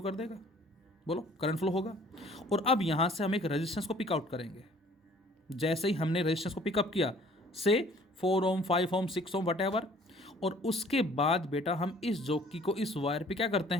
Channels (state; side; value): normal; both; correlation 0.54